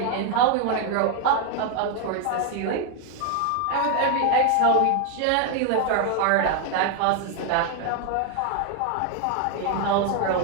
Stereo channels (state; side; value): different; both; correlation 0.01